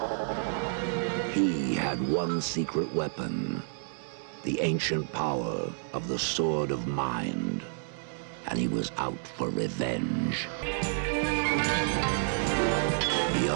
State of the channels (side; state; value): left; silent; digital silence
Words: He had one secret weapon, the ancient power of the Sword of Mind, and he was out for revenge.